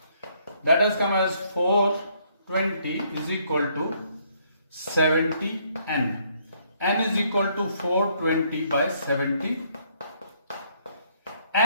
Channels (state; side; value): inverted; both; correlation -0.68